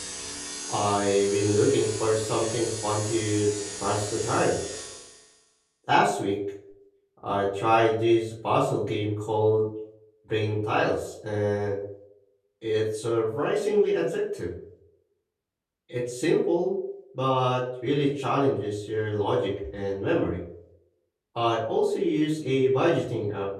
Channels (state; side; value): identical; both; correlation 1.00